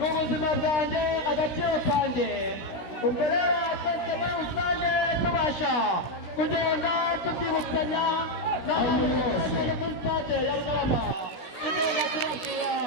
bwanjye agaciro kanjye ubwo rero twese muri rusange tubasha kugenda tubyibutsanya n'abantu bose muri stade ya Rugarama tugenda tubabwira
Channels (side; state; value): right; late; 16 ms